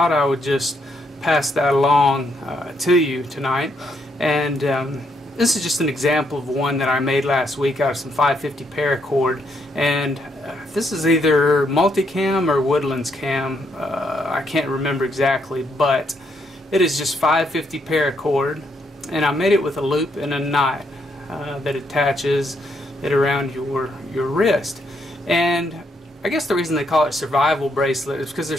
I would just pass that along to you tonight. And this is just an example of one that I made last week out of some 550 paracord, and this is either multicam or woodlands cam. I can't remember exactly, but it is just 550 paracord, and I made it with a loop and a knot that attaches it around your wrist. And I guess the reason they call it survival bracelet is because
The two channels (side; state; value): both; normal; correlation 0.75